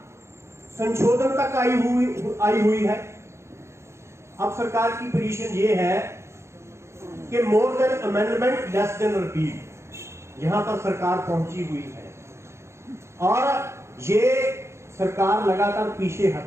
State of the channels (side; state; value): left; late; 0.13 ms